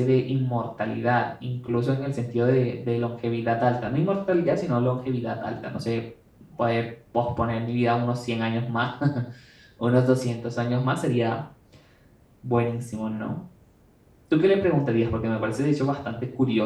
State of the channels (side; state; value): both; identical; correlation 1.00